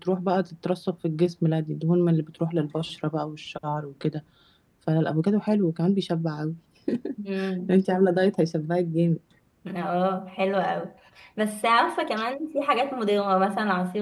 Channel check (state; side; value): identical; both; correlation 1.00